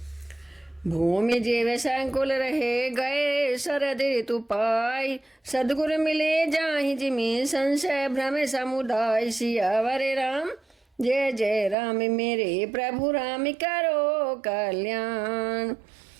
भूमि जीव संकुल रहे गए शरद ऋतु पाई, सदगुरु मिले जाहि जिमि संशय भ्रम समुदाय। सियावर राम जय जय राम मेरे प्रभु राम करो कल्याण।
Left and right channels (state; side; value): drops out; left; at 11.8 s